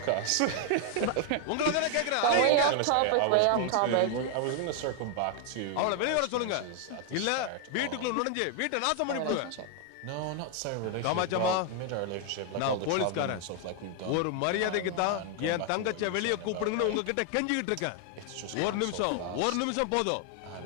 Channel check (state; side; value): different; both; correlation 0.00